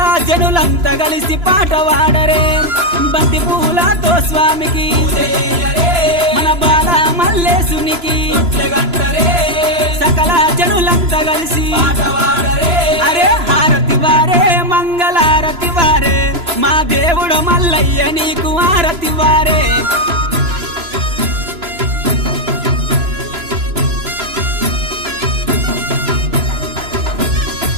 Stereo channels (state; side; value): late; left; 3.0 ms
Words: జనులంతా కలిసి పాట పాడరే బంతి పూలతో స్వామికి మన బాల మల్లేశునికి సకల జనులంతా కలిసి అరే హారతి వారే మంగళారతి వారే మా దేవుడు మల్లయ్య నీకు హారతి వారే